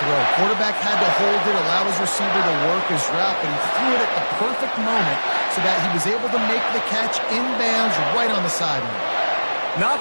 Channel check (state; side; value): inverted; both; correlation -1.00